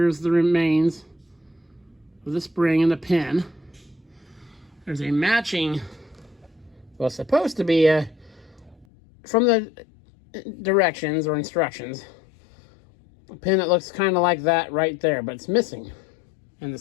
the remains of the spring and the pin. There's a matching, well, supposed to be from the directions or instructions, a pin that looks kind of like that right there, but it's missing and the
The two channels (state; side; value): drops out; right; at 8.8 s